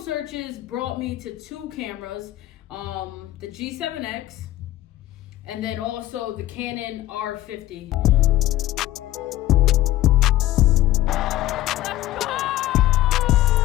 brought me to two cameras, the G7X and then also the Canon R50.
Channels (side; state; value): right; quieter; 15.0 dB